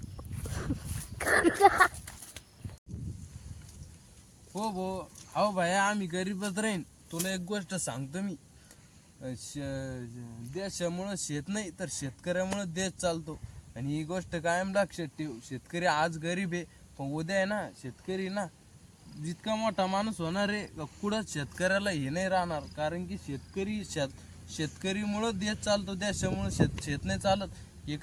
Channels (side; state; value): both; identical; correlation 1.00